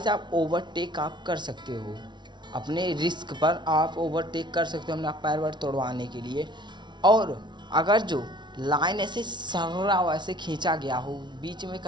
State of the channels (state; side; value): late; left; 0.22 ms